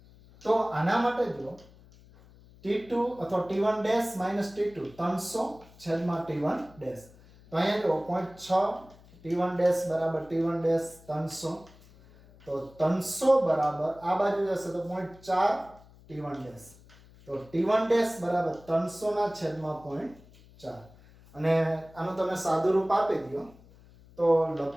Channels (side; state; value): left; noise; hum, 24 dB below the sound